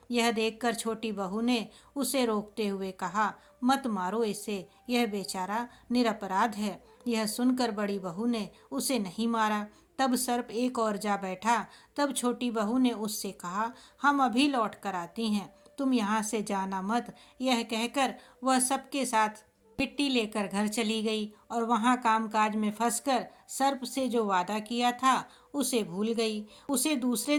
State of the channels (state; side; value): identical; both; correlation 1.00